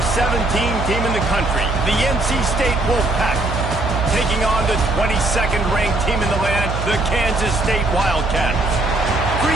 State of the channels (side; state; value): right; noise; hum, 4 dB below the sound